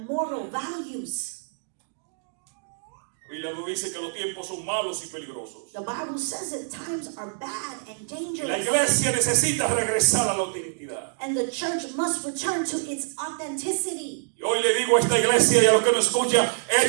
moral values. la Biblia nos dice que los tiempos son malos y peligrosos. The Bible says that times are bad and La dangerous. iglesia necesita regresar a la autenticidad. And the church must return to its authenticity. Y hoy le digo a esta iglesia y a los que nos escuchan,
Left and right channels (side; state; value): left; silent; digital silence